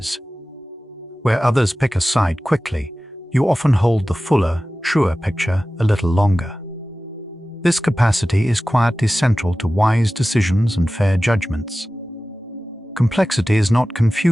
Where others pick a side quickly, you often hold the fuller, truer picture a little longer. This capacity is quietly central to wise decisions and fair judgments. Complexity is not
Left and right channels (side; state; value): both; normal; correlation 0.96